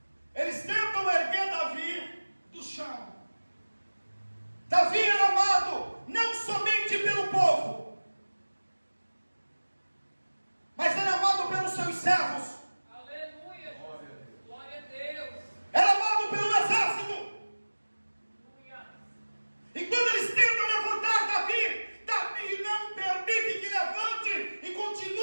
Eles tentam erguer Davi do chão. Davi era amado não somente pelo povo, mas era amado pelos seus servos. Aleluia! Glória a Deus! Era amado pelo exército. E quando eles tentam levantar Davi, Davi não permite que levante e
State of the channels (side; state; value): both; inverted; correlation -1.00